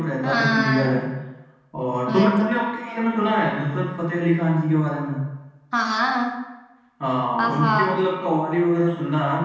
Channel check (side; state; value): both; identical; correlation 1.00